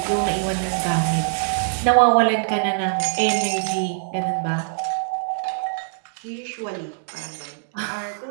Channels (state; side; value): silent; left; digital silence